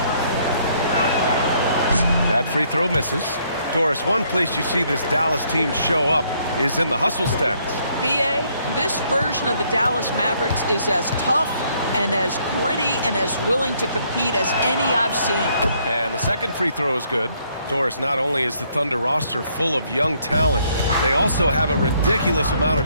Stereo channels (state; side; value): inverted; both; correlation -0.68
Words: That free throw misses. Doris, one place you see this Dallas team show up is in the hustle stats. B.A., this version of the Dallas Mavericks is as tough and as gritty and as willing to compete as any I've seen. And the second free throw is good. Doris, not only is the Thunder roster full of young talent, they also have a ridiculous amount